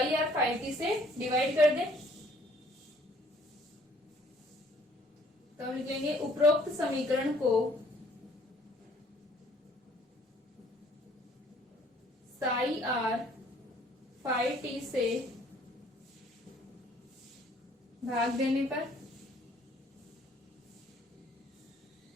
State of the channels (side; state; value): both; normal; correlation 0.60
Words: आर फाई टी से डिवाइड कर दें। तो हम लिखेंगे उपरोक्त समीकरण को साई आर फाई टी से भाग देने पर